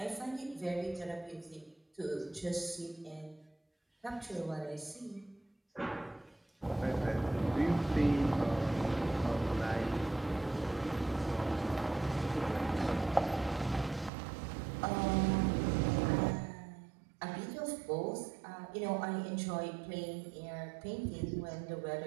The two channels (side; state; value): left; drops out; at 14.1 s